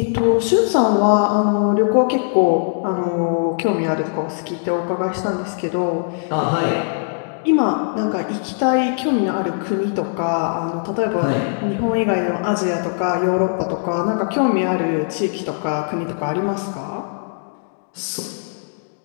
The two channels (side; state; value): right; silent; digital silence